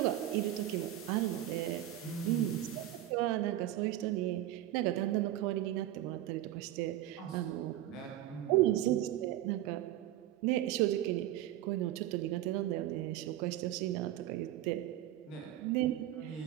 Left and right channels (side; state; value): left; quieter; 13.5 dB